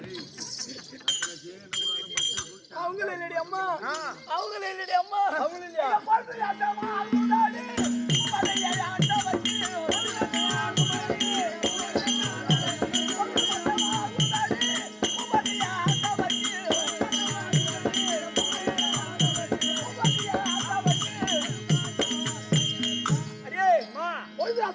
அவங்களும் இல்லடி அம்மா. அவங்களும் இல்லடி அம்மா. அவங்களும் இல்லையா?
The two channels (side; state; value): both; identical; correlation 1.00